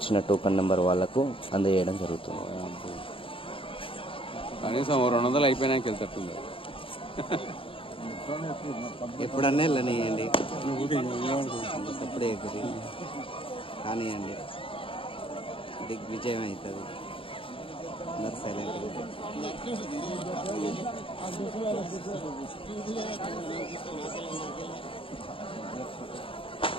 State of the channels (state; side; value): late; right; 0.26 ms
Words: టోకన్ నెంబర్ వాళ్ళకు అందజేయడం జరుగుతుంది. కనీసం 200 అయిపోయినాక వెళ్తుంది. ఎప్పుడన్నా వెళ్ళనియండి, అప్పుడే కానివ్వండి, దిగ్విజయం అవుతుంది. అందరు సైలెంట్.